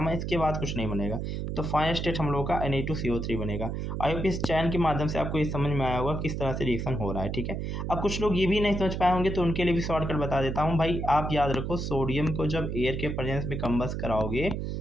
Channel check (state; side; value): noise; right; hum, 3 dB below the sound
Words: इसके बाद कुछ नहीं बनेगा, तो फाइनल स्टेट हम लोग का Na2CO3 बनेगा। आई होप इस चैन के माध्यम से आपको ये समझ में आया होगा किस तरह से रिएक्शन हो रहा है। ठीक है, अब कुछ लोग ये भी नहीं समझ पाए होंगे, तो उनके लिए भी शॉर्टकट बता देता हूँ। भाई आप याद रखो, सोडियम को जब एयर के प्रेजेंस में कंबस्ट कराओगे